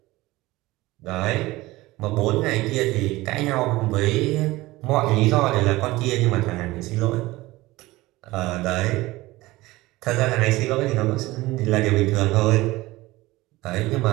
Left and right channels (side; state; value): left; quieter; 19.3 dB